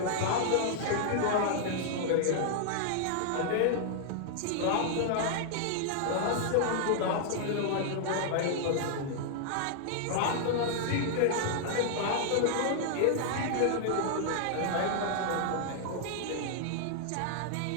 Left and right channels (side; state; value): both; different; correlation -0.01